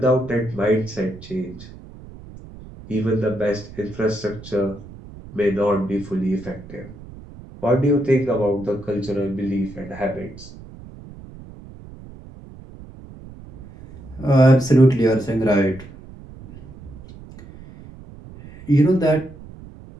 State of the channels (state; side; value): noise; right; rumble, 17 dB below the sound